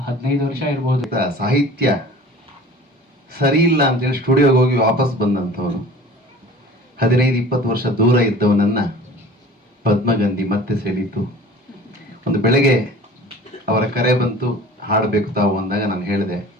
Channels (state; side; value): normal; both; correlation 0.43